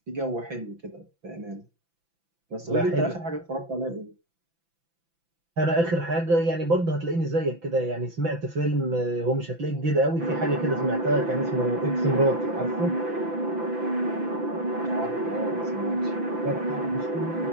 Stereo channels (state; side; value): late; left; 5.9 ms